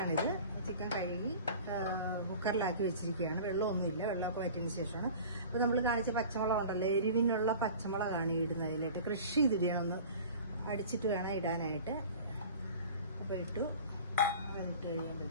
ചിക്കൻ കഴുകി കുക്കറിലാക്കി വെച്ചിരിക്കുകയാണ്. വെള്ളമൊന്നുമില്ല, വെള്ളമൊക്കെ വറ്റിയതിന് ശേഷമാണ്. അപ്പോൾ നമ്മൾ കാണിച്ച പച്ചമുളക് ഉണ്ടല്ലോ, എരിവിനുള്ള പച്ചമുളകാണ് ഇടുന്നത്. അതിലായിട്ട് കൃഷി ചെയ്തിടണം, ഒന്ന് അടിച്ചിട്ട് വേണം ഇടാനായിട്ട്. അപ്പോൾ ഇട്ടു. അതിട്ട്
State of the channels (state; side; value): inverted; both; correlation -0.41